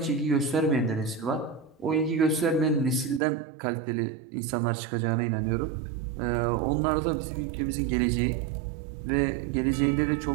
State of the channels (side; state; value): left; drops out; at 3.2 s